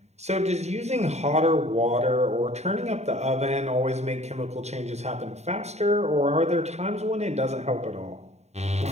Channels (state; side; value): late; left; 0.32 ms